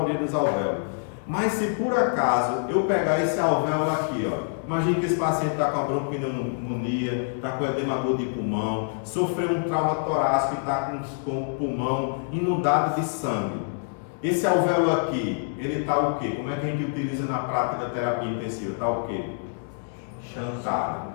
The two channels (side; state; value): right; silent; digital silence